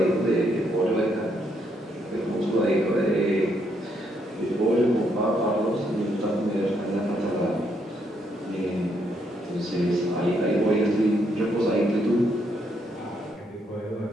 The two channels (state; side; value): normal; both; correlation 0.74